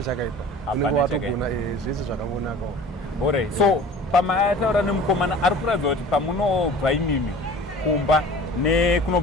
chakaipa. Unenge watogona zvese zvakangonakawo. Alright. So pamataura nemukomana ari kuratidza kuti pamunobva imimi kumba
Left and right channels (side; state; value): both; normal; correlation 0.43